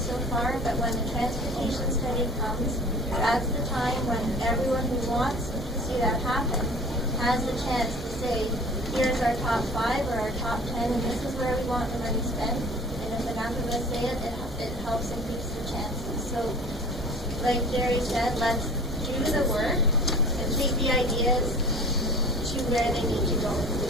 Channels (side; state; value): both; normal; correlation 0.44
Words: far, but when the transportation study comes, that's the time when everyone who wants to see that happen has the chance to say, here's our top 5 or our top 10, and this is where we want the money spent. And if enough of us say it, it helps increase the chances. So, like Jerry said, let's do the work and take the ideas to where they need to go.